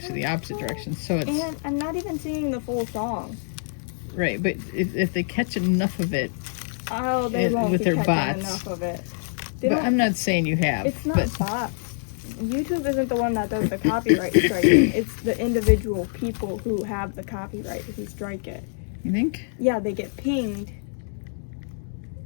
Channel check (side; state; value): right; silent; digital silence